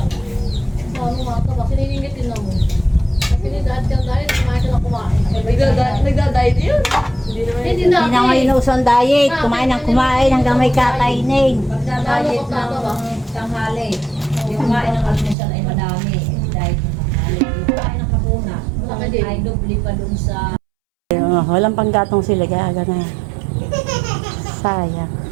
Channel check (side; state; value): left; drops out; at 15.4 s